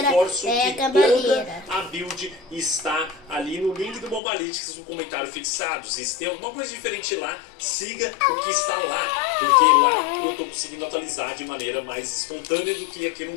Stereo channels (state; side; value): drops out; right; at 4.2 s